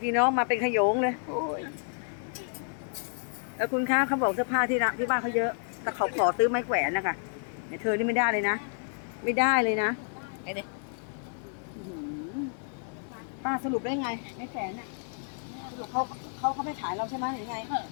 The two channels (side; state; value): right; silent; 58 dB below the other